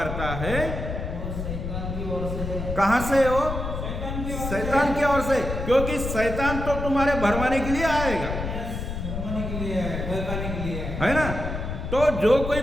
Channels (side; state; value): left; noise; rumble, 5 dB below the sound